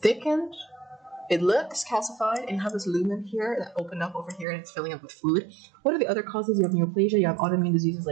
thickened. It looks calcified, and you have this lumen here that opened up over here, and it's filling up with fluid. What are the other causes? You have neoplasia, you have autoimmune diseases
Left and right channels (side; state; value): left; drops out; at 4.5 s